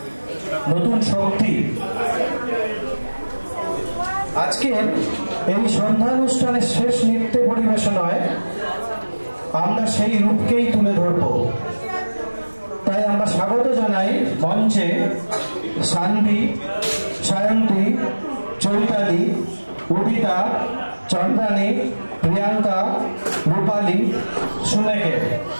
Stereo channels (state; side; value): inverted; both; correlation -1.00